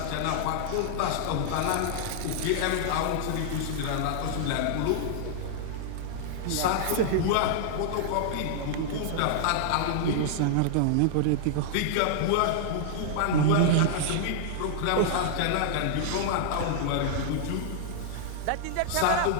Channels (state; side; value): different; both; correlation -0.01